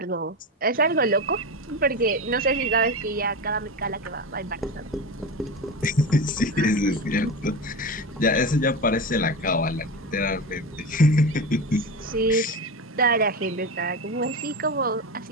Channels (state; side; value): normal; both; correlation 0.22